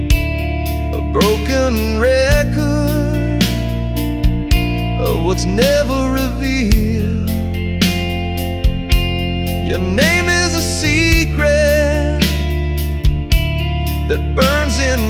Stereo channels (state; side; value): identical; both; correlation 1.00